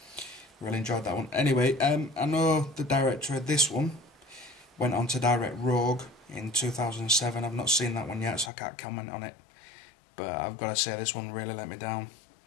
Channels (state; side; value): drops out; right; at 8.5 s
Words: really enjoyed that one. Anyway, I know the director of this one went on to direct Rogue in 2007. I've not seen that one yet, so I can't comment on it, but I've got to say this one really let me down.